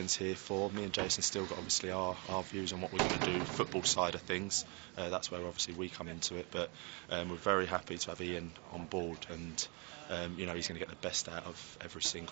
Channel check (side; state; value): left; quieter; 32.1 dB